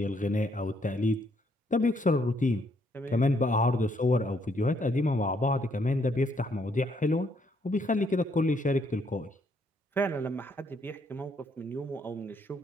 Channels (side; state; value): both; normal; correlation 0.71